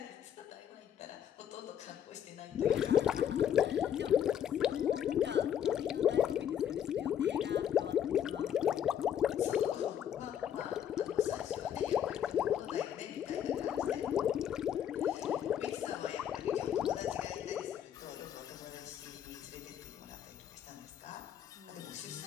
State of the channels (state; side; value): quieter; right; 9.7 dB